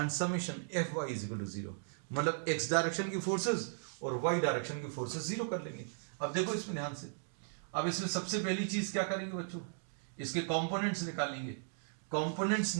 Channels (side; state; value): left; silent; digital silence